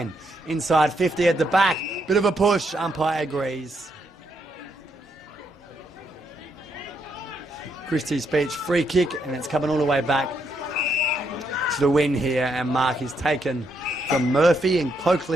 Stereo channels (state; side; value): normal; both; correlation 0.77